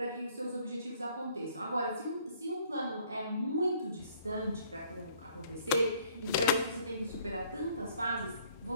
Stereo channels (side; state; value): both; inverted; correlation -0.61